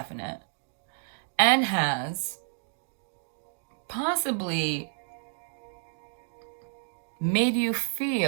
and has possibly made you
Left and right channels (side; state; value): left; silent; digital silence